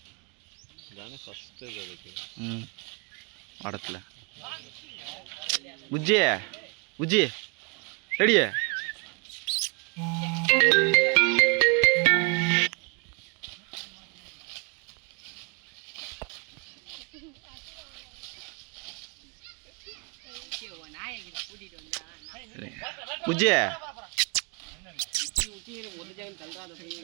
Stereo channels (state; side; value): quieter; left; 33.6 dB